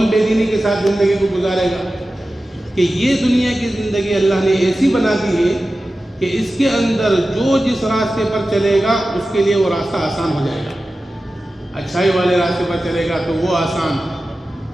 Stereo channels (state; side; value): normal; both; correlation 0.94